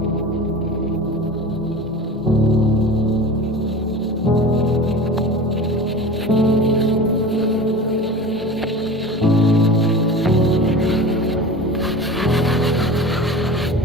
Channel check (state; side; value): normal; both; correlation 0.34